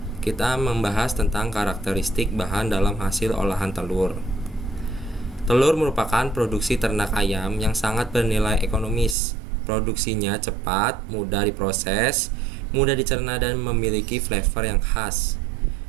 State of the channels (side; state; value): left; drops out; at 9.2 s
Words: kita membahas tentang karakteristik bahan dalam hasil olahan telur. Telur merupakan produksi ternak ayam yang sangat bernilai ekonomis. Produksinya cepat, mudah diproses, mudah dicerna dan memiliki flavor yang khas.